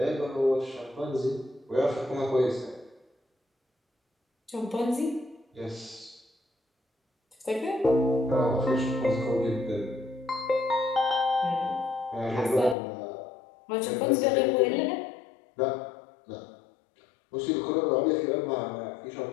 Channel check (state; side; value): drops out; right; at 12.8 s